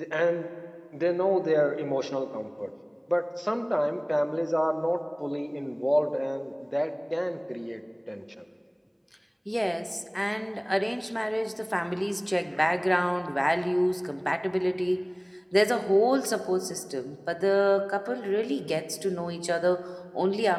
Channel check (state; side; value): identical; both; correlation 1.00